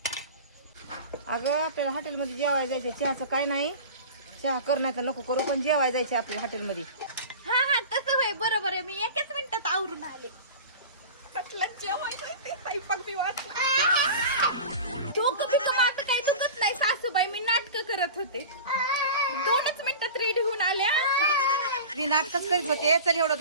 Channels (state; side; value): inverted; both; correlation -0.34